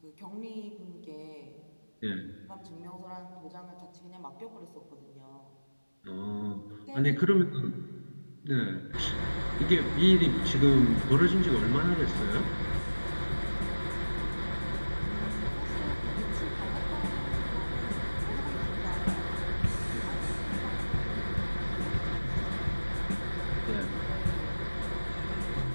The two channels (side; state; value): both; inverted; correlation -1.00